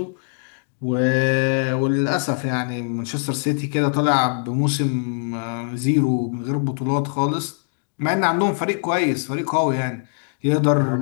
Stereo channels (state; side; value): silent; right; digital silence